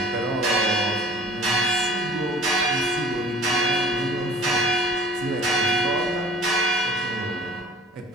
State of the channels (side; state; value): both; normal; correlation 0.47